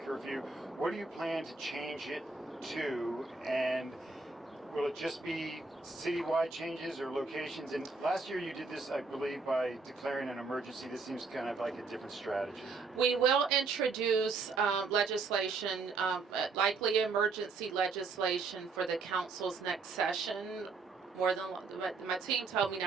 What do you plan to change it to, and will it just be citywide changes or locations? And last year you did this, I believe, by declaring an emergency. This seems kind of like a different strategy. We will introduce legislation, likely emergency legislation for the council's next session. My team told me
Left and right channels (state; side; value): quieter; left; 4.2 dB